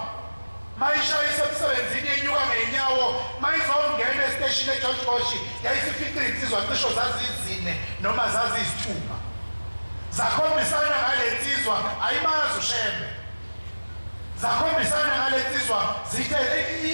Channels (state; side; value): inverted; both; correlation -1.00